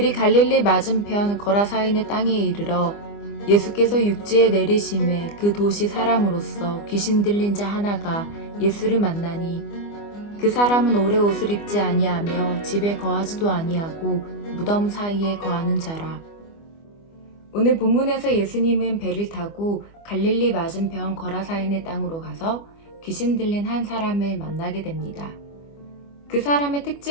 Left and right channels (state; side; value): late; right; 25 ms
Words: 갈릴리 맞은편 거라사인의 땅에 이르러 예수께서 육지에 내리심에 그 도시 사람으로서 귀신 들린 자 하나가 예수를 만나니 그 사람은 오래 옷을 입지 아니하며 집에 거하지도 아니하고 무덤 사이에 거하는 자라. 오늘 본문에서 예수님은 배를 타고 갈릴리 맞은편 거라사인의 땅으로 가서 귀신 들린 한 사람을 만나게 됩니다. 그 사람의